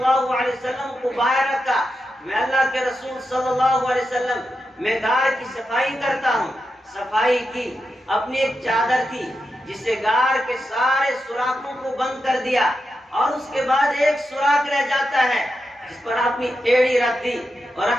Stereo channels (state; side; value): normal; both; correlation 0.88